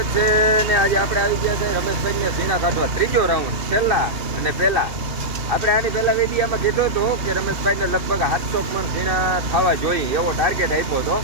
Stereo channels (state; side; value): late; left; 2.6 ms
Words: છે ને આજે આપણે આવી ગયા છે રમેશભાઈને ઝીણા કાઢવા ત્રીજો રાઉન્ડ છેલ્લા અને પહેલા. આપણે આની પહેલા વિડીયામાં કીધું હતું કે રમેશભાઈને લગભગ 700 મણ ઝીણા થવા જોઈએ એવો ટાર્ગેટ આપ્યો હતો.